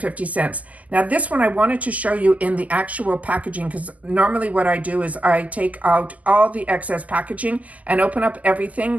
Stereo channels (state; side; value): late; left; 0.075 ms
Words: Now this one I wanted to show you in the actual packaging, because normally what I do is I take out all the excess packaging and open up everything